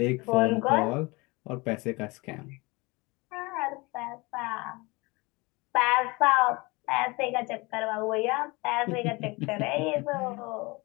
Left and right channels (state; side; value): quieter; right; 25.0 dB